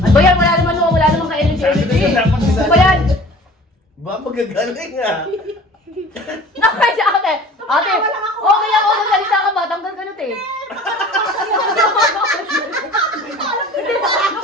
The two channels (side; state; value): both; normal; correlation 0.45